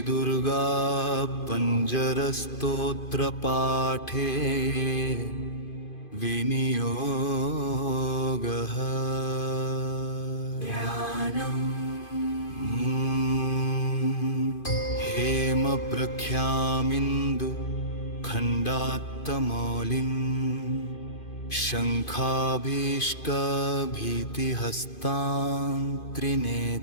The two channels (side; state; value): right; late; 2.5 ms